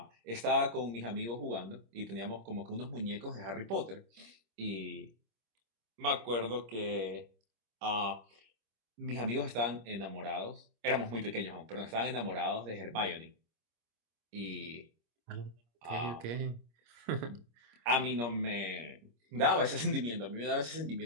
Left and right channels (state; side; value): late; left; 25 ms